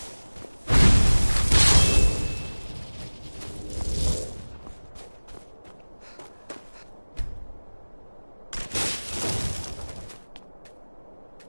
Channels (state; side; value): inverted; both; correlation -1.00